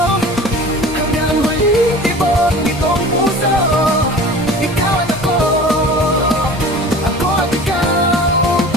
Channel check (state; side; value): normal; both; correlation 0.40